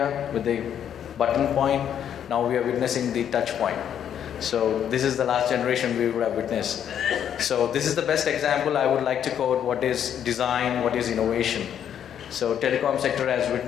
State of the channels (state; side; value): quieter; right; 9.3 dB